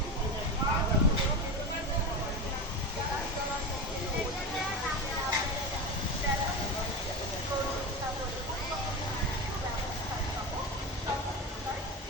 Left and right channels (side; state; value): both; normal; correlation 0.22